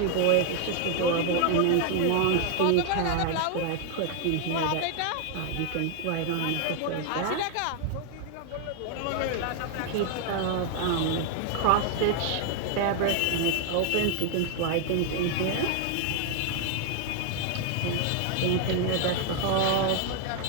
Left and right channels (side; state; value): both; different; correlation 0.01